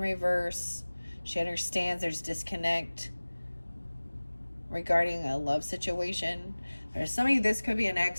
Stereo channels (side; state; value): both; inverted; correlation -1.00